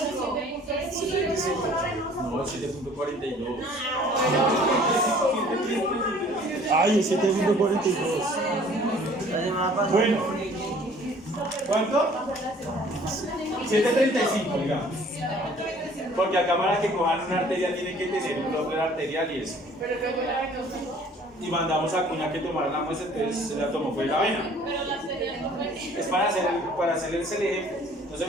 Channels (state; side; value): normal; both; correlation 0.53